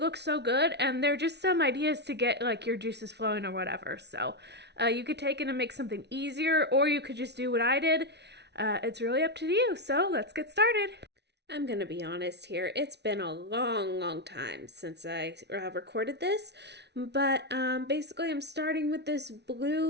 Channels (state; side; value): late; left; 0.50 ms